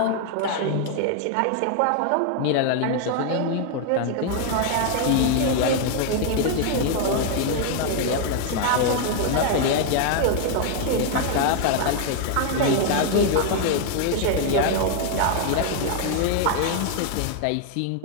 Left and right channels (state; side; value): different; both; correlation 0.00